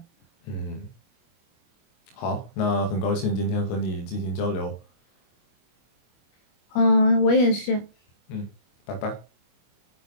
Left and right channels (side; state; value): right; late; 25 ms